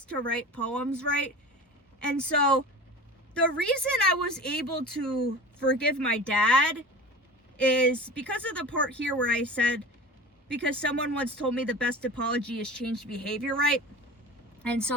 to write poems, right? And so, the reason I was able to forgive my dad is because of the part here where I said, because someone once told me the best apology is changed behavior, right? And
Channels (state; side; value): normal; both; correlation 0.34